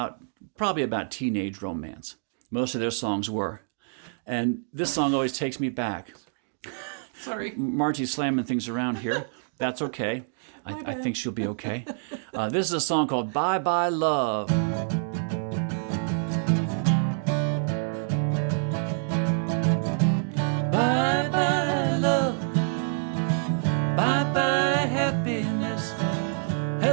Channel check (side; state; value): left; silent; digital silence